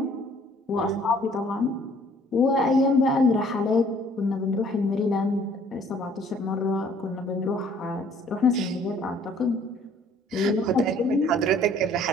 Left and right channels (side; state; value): both; normal; correlation 0.58